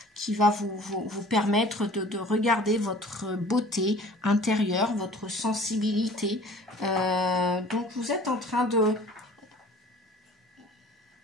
qui va vous permettre de regarder votre beauté intérieure, votre sensibilité. Donc vous êtes en train de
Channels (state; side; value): normal; both; correlation 0.47